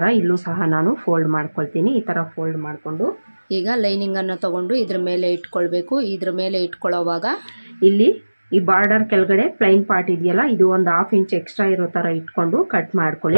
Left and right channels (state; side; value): inverted; both; correlation -1.00